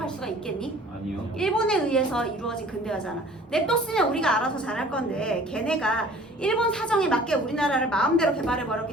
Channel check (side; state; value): both; normal; correlation 0.50